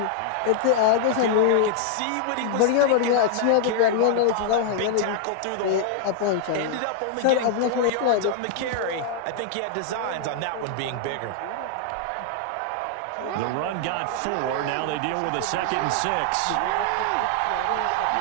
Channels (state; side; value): different; both; correlation -0.01